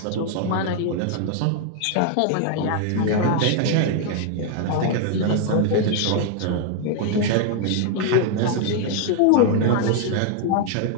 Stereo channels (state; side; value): different; both; correlation 0.00